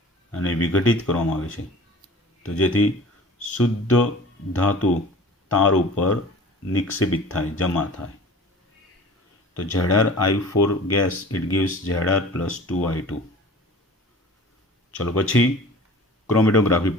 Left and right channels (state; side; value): normal; both; correlation 0.43